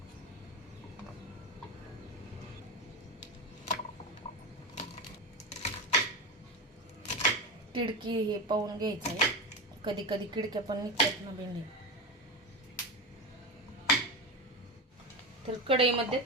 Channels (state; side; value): normal; both; correlation 0.20